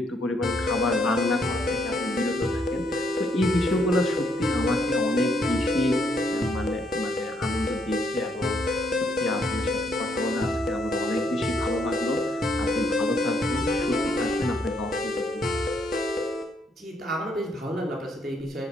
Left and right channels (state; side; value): normal; both; correlation 0.72